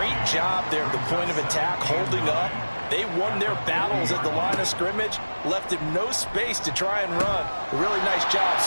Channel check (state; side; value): inverted; both; correlation -1.00